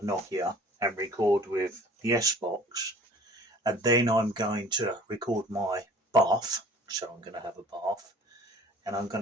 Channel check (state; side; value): normal; both; correlation 0.48